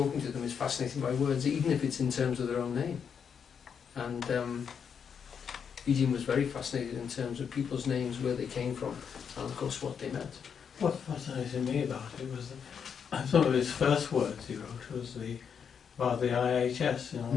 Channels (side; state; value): right; quieter; 7.1 dB